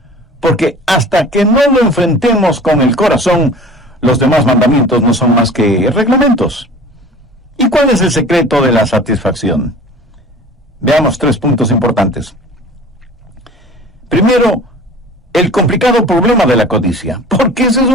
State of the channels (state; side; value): normal; both; correlation 0.42